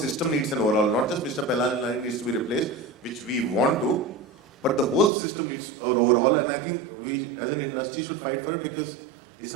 needs an overhaul. Not just Mr. Pellanani needs to be replaced, which we want to, but the whole system needs an overhaul, and I think we as an industry should fight for it, because it's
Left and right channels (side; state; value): left; drops out; at 5.1 s